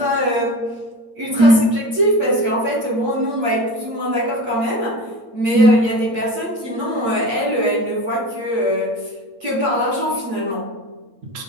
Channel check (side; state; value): left; late; 8.8 ms